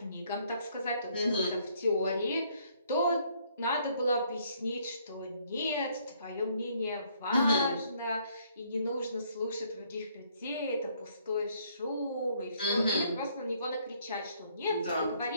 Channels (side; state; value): both; inverted; correlation -0.66